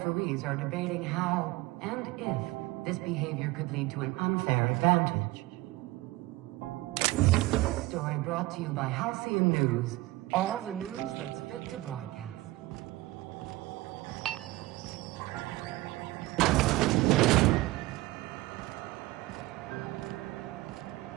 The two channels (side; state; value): left; quieter; 19.5 dB